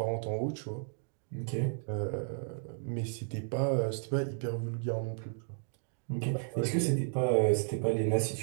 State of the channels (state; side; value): silent; left; digital silence